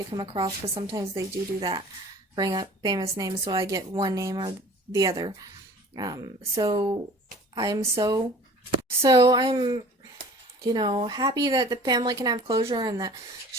come across, because sometimes they do that, bring up famous names, so I get one name or the other. So I'm happy that the family can have closure and that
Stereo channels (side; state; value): both; normal; correlation 0.46